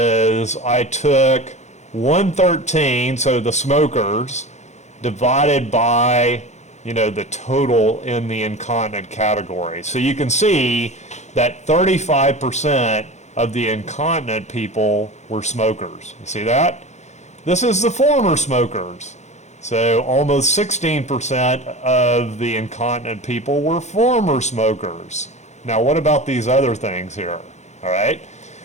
I took 113, so the smokers, divided by, you know, the total in the incontinent category. So you can see that 35% of the incontinent people were smokers. You see that? This is the former smokers. So almost 16% of the incontinent people were former smokers. Now what about these other things here? All right.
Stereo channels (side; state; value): right; late; 0.33 ms